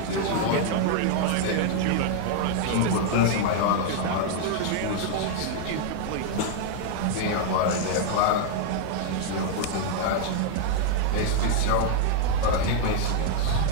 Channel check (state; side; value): different; both; correlation 0.00